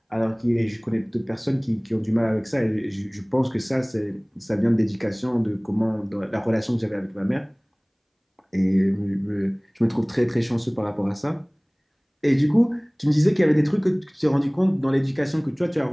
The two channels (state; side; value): identical; both; correlation 1.00